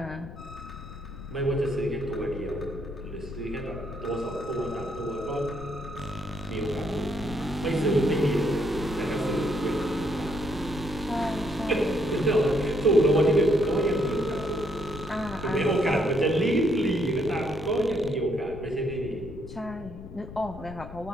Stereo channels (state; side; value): noise; left; rumble, 13 dB below the sound